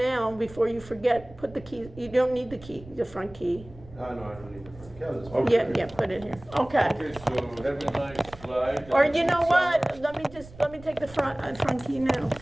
before you forget, put the key, you don't need the key, the front key. No, I don't need the front. Yeah, I'll just Okay. Yeah, put it here, okay. Okay, so have a nice flight. Or and you know good what, summer. let me take the front key now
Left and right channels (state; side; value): noise; right; rumble, 19 dB below the sound